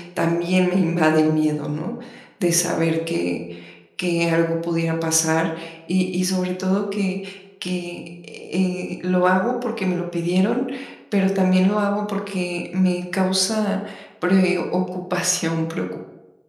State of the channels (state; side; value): identical; both; correlation 1.00